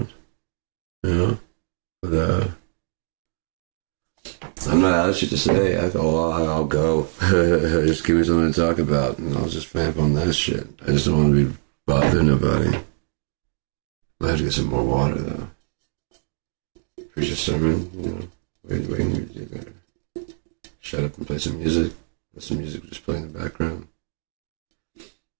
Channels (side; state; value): left; silent; 63 dB below the other